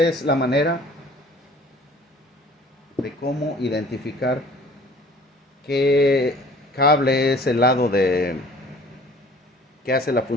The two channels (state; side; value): normal; both; correlation 0.50